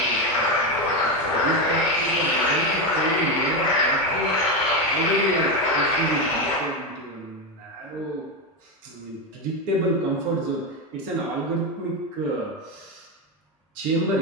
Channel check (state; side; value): normal; both; correlation 0.12